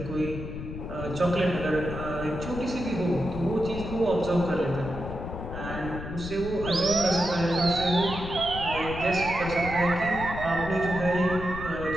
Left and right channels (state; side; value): noise; left; rumble, 8 dB below the sound